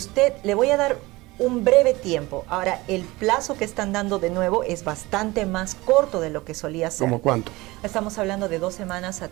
le voy a dar un breve tiempo. Ahora, el plazo que están dando de nuevo es bastante más corto de lo que solía ser. ¿Cómo cuánto? Estamos hablando de 2 semanas a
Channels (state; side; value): quieter; left; 21.1 dB